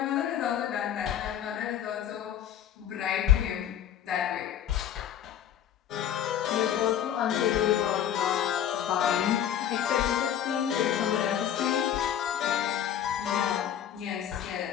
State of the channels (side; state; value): right; quieter; 10.0 dB